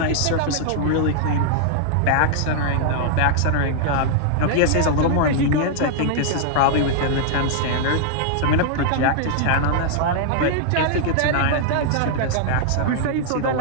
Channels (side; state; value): both; different; correlation -0.01